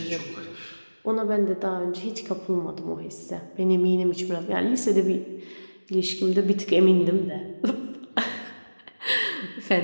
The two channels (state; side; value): inverted; both; correlation -1.00